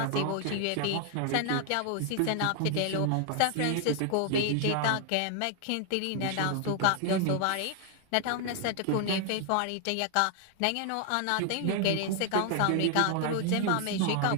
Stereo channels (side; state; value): both; different; correlation 0.00